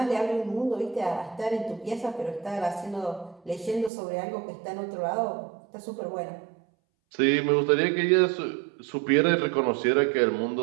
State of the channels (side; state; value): left; drops out; at 3.9 s